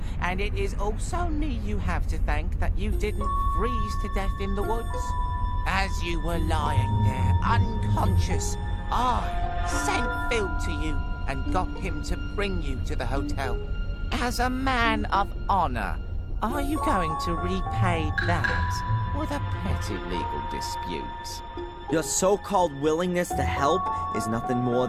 and it is also me you have to thank that you didn't freeze to death in the woods. As you were lying there, unconscious, I sent Phil to you and got him to bring you to the hotel. As a man of honor, are you going to repay that with a petty legal dispute? Your so-called willingness to help is nothing more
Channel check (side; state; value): both; identical; correlation 1.00